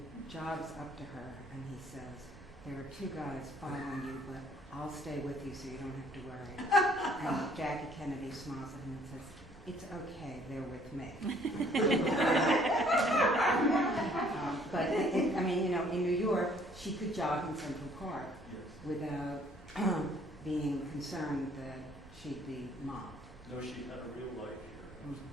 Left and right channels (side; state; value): both; normal; correlation 0.60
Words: jogs up to her and he says, "There are two guys following you, but I'll stay with you so you don't have to worry." And Jackie Kennedy smiles at him and says, "It's okay, they're with me." But in New York, she could jog in Central Park without being concerned that she'd be mobbed. No, she had a real life here.